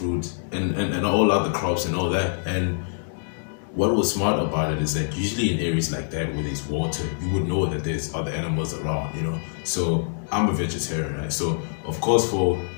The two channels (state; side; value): silent; right; digital silence